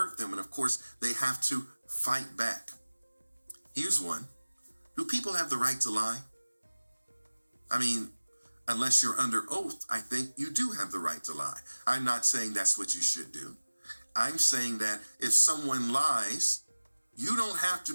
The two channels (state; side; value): inverted; both; correlation -1.00